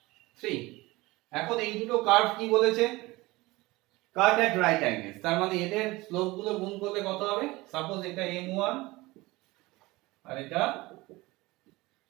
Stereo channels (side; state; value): left; quieter; 21.0 dB